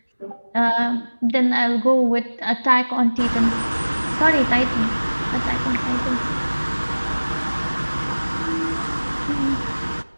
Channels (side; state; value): both; inverted; correlation -1.00